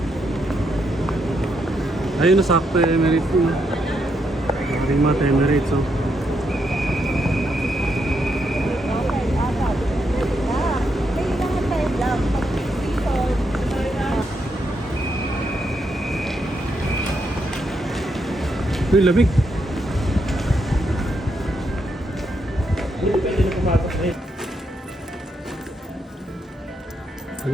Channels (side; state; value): both; normal; correlation 0.79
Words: Ayun na sakto yung Emirates mo. Maring mata Emirates oh. Kailangan tayo lang. Uy, lamig. Pwede na pumatok na eh. Ano